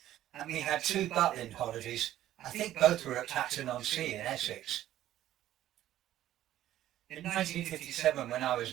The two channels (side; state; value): left; quieter; 13.0 dB